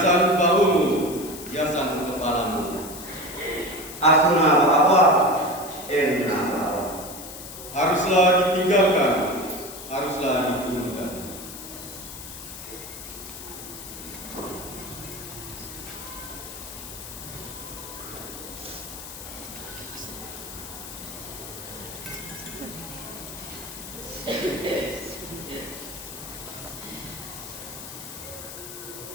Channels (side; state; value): left; noise; hiss, 12 dB below the sound